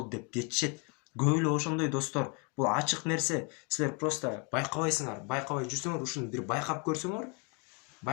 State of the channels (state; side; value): quieter; right; 33.6 dB